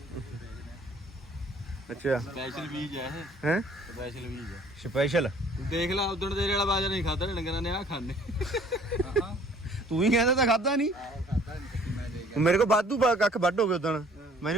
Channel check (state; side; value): normal; both; correlation 0.55